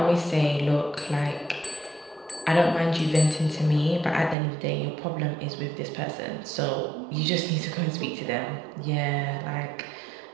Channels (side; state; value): left; drops out; at 4.4 s